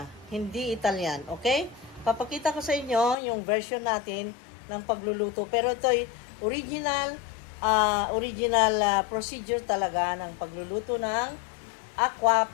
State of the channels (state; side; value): drops out; right; at 3.2 s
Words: hindi Italian, okay? Papakita ko sa inyo yung version natin ng pagluluto. Pero ito ay original procedure talaga ng pagluluto ng aqua